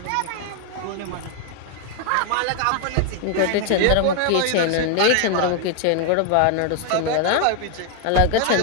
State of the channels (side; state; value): both; different; correlation 0.00